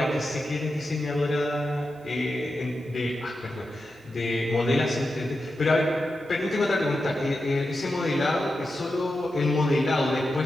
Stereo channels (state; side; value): normal; both; correlation 0.89